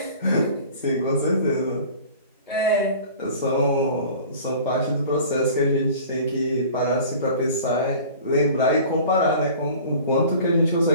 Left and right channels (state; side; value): inverted; both; correlation -0.44